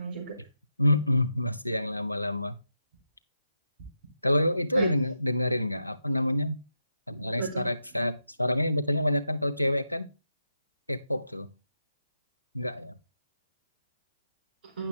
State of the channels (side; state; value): both; inverted; correlation -0.87